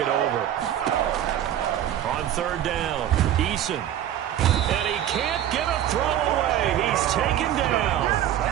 over. On 3rd down, Eason. And he can't get a throw away. He's taken down.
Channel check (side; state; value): left; quieter; 11.2 dB